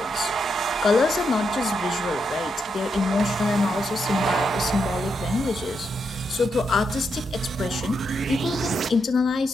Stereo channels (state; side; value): normal; both; correlation 0.82